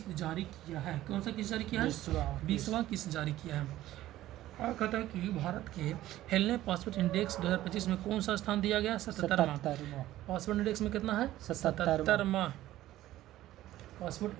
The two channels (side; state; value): left; quieter; 14.6 dB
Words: जारी किया है। कौन सा किस्त जारी किया है? 20वां किस्त जारी किया है। और कहता है कि भारत के हेलने पासपोर्ट इंडेक्स 2025 में कौन सा स्थान दिया गया? 77वां। पासपोर्ट इंडेक्स में कितना है? 77वां